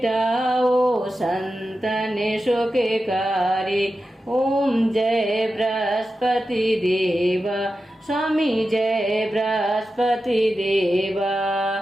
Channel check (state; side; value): normal; both; correlation 0.92